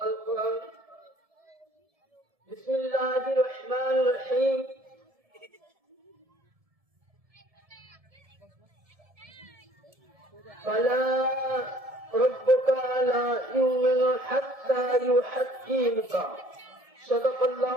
بسم الله الرحمن الرحيم. فلا ربك لا يؤمن حتى يحكمك. صدق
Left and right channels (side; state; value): left; late; 1.7 ms